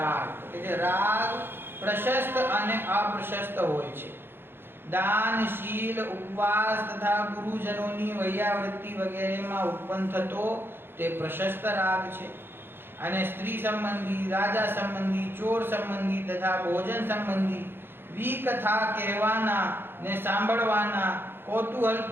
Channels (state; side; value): late; left; 0.10 ms